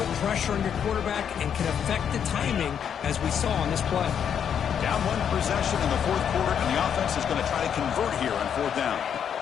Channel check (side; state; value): right; quieter; 8.2 dB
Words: pressure on your quarterback and can affect the timing, as we saw on this play. Down 1 possession in the 4th quarter, and the offense is going to try to convert here on 4th down.